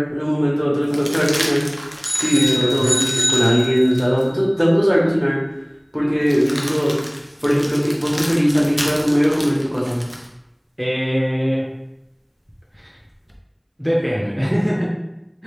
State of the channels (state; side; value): identical; both; correlation 1.00